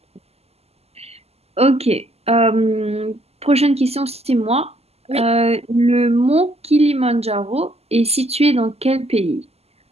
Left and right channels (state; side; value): late; left; 0.29 ms